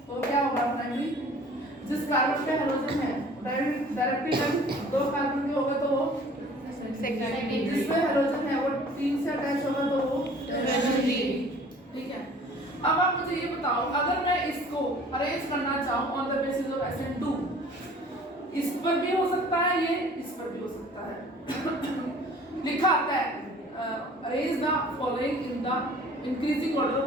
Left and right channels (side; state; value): both; normal; correlation 0.49